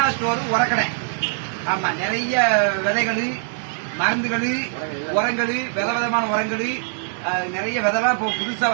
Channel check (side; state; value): left; silent; digital silence